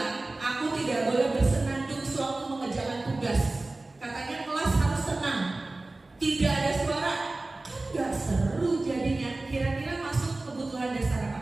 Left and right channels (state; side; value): quieter; left; 3.0 dB